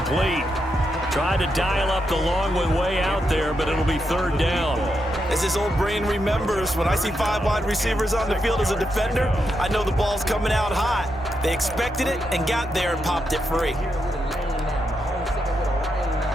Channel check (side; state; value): both; normal; correlation 0.83